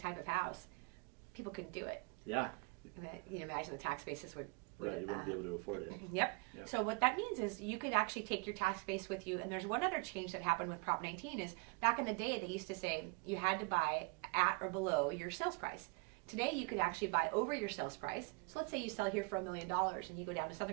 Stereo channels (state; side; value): quieter; left; 30.4 dB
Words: of house, people couldn't do it. Yeah. You can imagine the tax bases would Right, you wouldn't be able to afford it. Yep. So what that means is you could actually take your tax base with you. And there's one other change that happened with Prop 19 is back in the day they used to say you had to buy at or below your sales price. Today you could actually buy over your sales price. So let's say you sell here for $1 million and you go down to